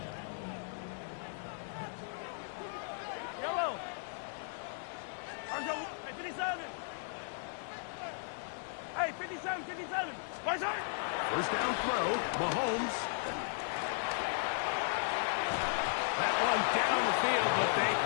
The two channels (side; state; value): right; silent; digital silence